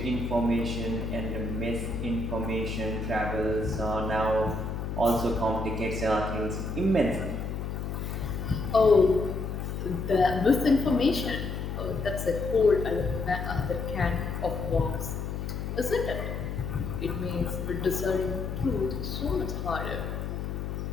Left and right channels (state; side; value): noise; left; hum, 4 dB below the sound